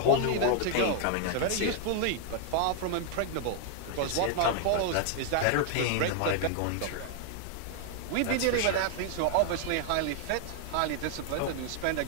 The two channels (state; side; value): different; both; correlation 0.00